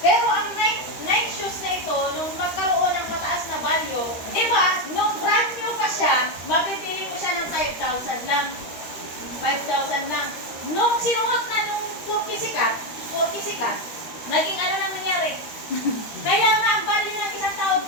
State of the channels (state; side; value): late; right; 13 ms